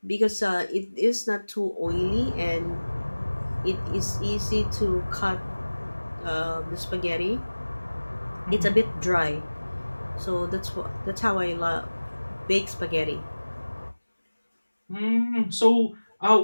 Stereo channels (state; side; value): inverted; both; correlation -1.00